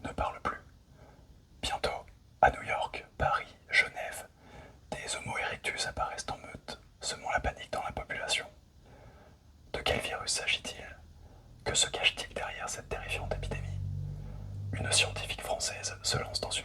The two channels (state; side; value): identical; both; correlation 1.00